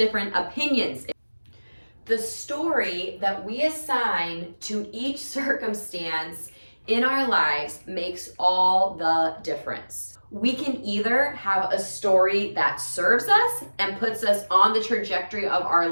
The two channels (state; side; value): inverted; both; correlation -1.00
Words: opinions. The story that we assign to each circumstance in our lives makes all the difference. We can either have a story that serves us and puts us on the trajectory of our